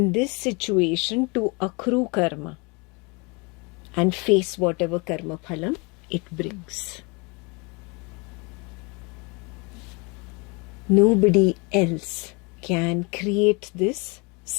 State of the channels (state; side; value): quieter; right; 29.6 dB